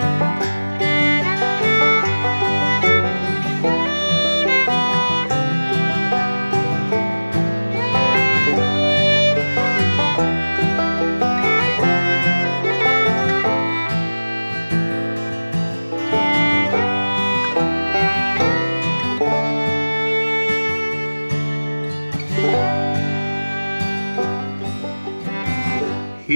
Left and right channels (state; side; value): inverted; both; correlation -1.00